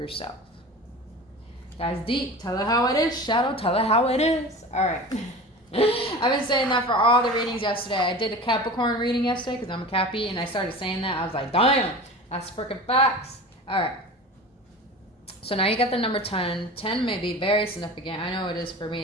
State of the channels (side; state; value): both; normal; correlation 0.35